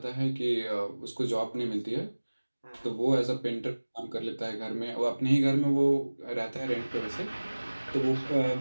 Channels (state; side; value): inverted; both; correlation -1.00